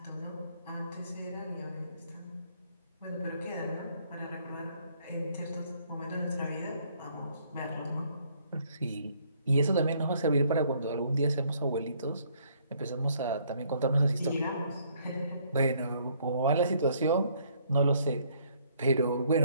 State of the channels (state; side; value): inverted; both; correlation -0.65